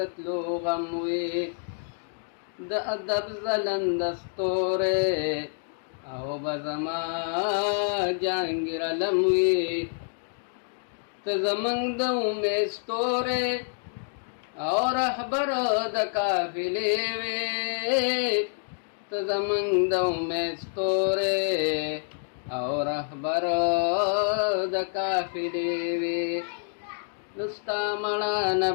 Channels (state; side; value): silent; right; 60 dB below the other